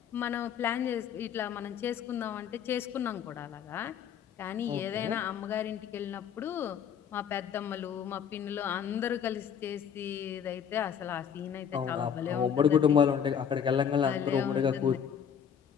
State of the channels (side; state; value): right; quieter; 8.1 dB